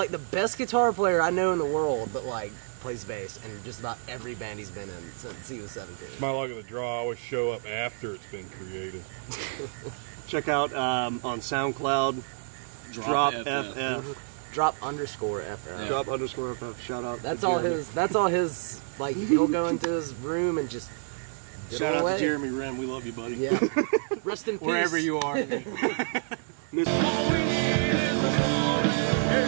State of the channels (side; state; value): left; silent; digital silence